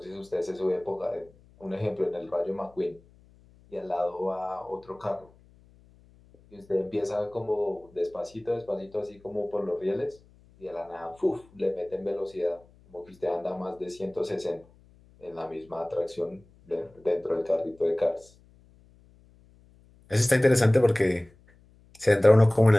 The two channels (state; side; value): noise; left; hum, 28 dB below the sound